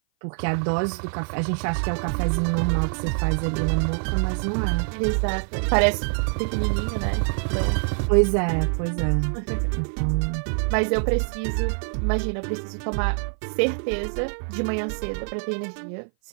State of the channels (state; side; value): silent; left; 57 dB below the other